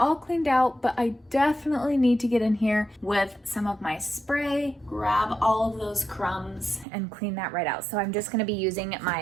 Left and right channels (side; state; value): left; drops out; at 6.9 s